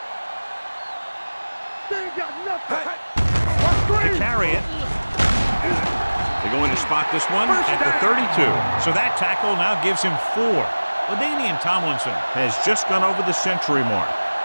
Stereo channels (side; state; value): both; inverted; correlation -1.00